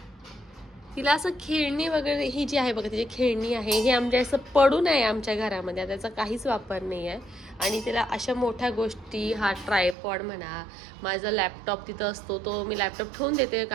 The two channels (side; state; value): left; drops out; at 10.0 s